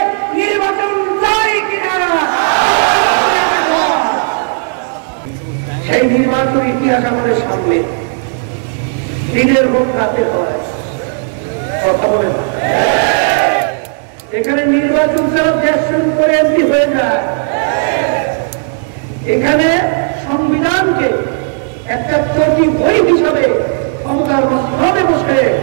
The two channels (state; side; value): silent; left; 60 dB below the other